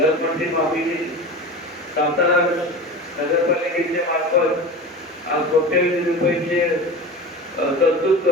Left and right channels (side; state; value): both; normal; correlation 0.31